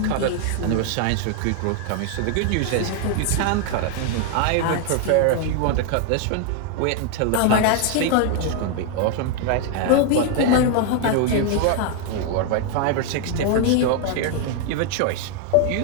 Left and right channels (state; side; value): different; both; correlation 0.00